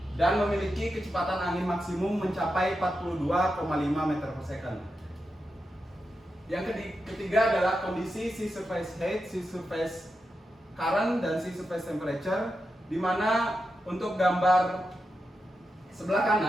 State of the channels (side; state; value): both; normal; correlation 0.88